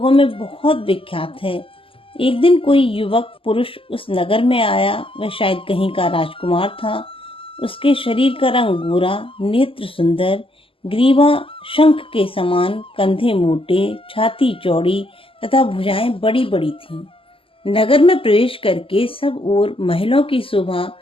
में बहुत विख्यात है। एक दिन कोई युवक पुरुष उस नगर में आया। वह शायद कहीं का राजकुमार था। उसके शरीर का रंग गोरा, नेत्र सुंदर, ग्रीवा शंख के समान, कंधे मोटे, छाती चौड़ी तथा भुजाएं बड़ी बड़ी थीं। नगर में प्रवेश करके सब ओर महलों की शोभा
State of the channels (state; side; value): late; right; 0.26 ms